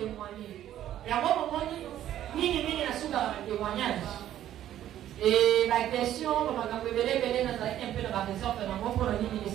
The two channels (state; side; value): quieter; left; 12.0 dB